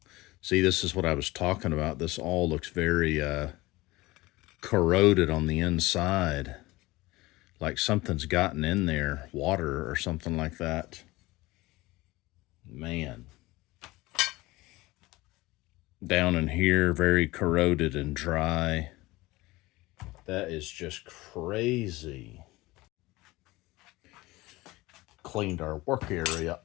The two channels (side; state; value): right; quieter; 20.3 dB